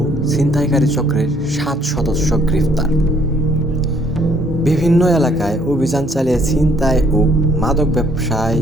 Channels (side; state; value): both; normal; correlation 0.64